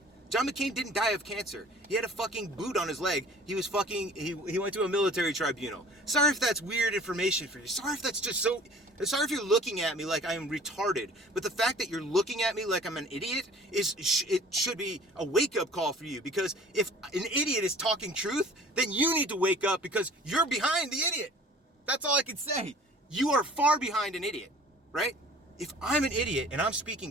John McCain didn't die of cancer. He had a fucking boot on his leg. He went to a military tribunal. Sorry if that's weird information for you. Sorry if that's just so... Sorry if you're looking at me like I am retarded. But the fact that you're looking at me like I'm an idiot, it should be a wake-up call for you. Because if an idiot is talking truth, then you need to wake up because you're behind the idiot. That's all I can say. You are far behind an idiot, right? If I'm an idiot and I'm speaking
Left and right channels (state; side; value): normal; both; correlation 0.48